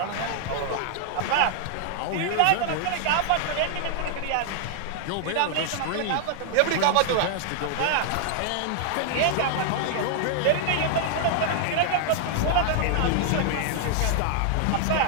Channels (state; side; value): different; both; correlation 0.00